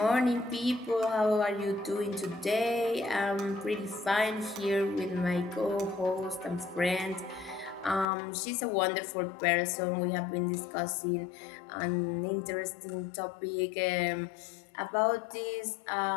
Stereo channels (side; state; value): right; drops out; at 8.1 s